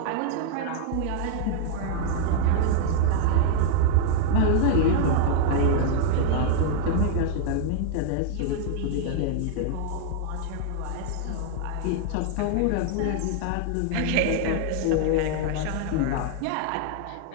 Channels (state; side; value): different; both; correlation 0.00